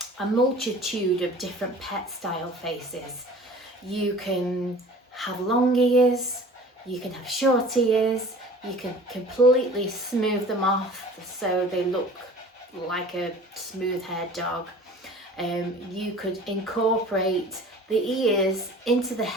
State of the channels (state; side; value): normal; both; correlation 0.44